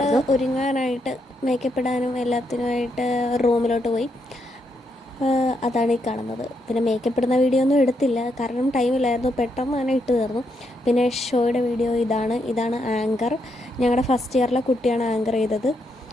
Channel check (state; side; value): normal; both; correlation 0.79